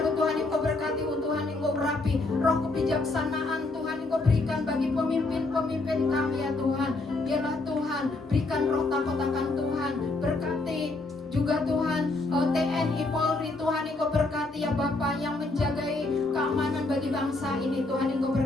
Tuhan Engkau berkati, Tuhan Engkau rapi. Roh kebijaksanaan Tuhan Engkau berikan bagi pemimpin-pemimpin kami ya Tuhan. Biarlah Tuhan berikan roh takut-akan Tuhan. Berkati juga Tuhan TNI Polri Tuhan Engkau berkati ya Bapa, yang menjagai keamanan bagi bangsa ini Tuhan Engkau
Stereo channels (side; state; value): right; quieter; 3.2 dB